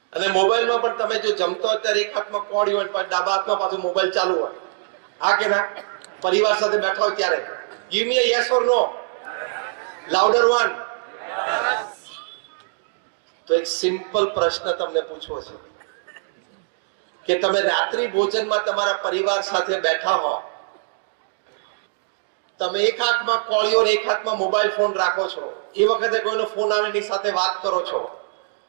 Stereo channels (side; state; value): left; silent; digital silence